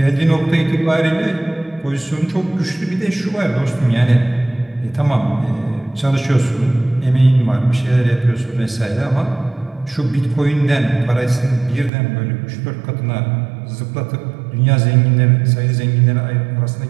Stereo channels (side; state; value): left; drops out; at 11.9 s